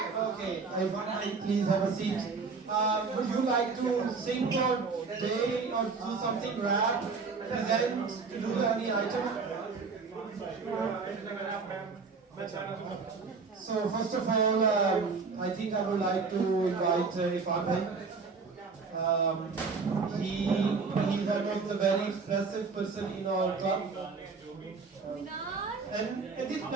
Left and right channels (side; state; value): left; quieter; 4.7 dB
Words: Okay, Irfan bhai, please have a seat. Would you like to sing or play or do something rap, present, to do any item? So first of all, I think I would like to invite Irfan bhai. He's one of the very expressive person in our club. And this